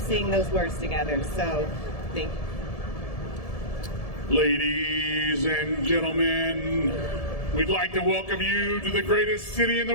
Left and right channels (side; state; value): right; late; 1.7 ms